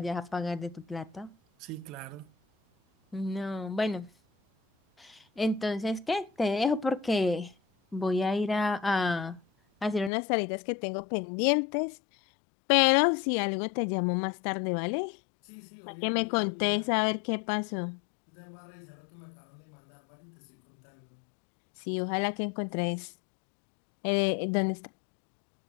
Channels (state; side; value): drops out; right; at 10.1 s